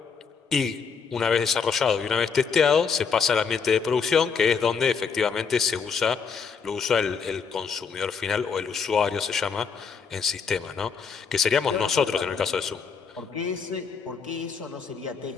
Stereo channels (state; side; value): quieter; right; 5.9 dB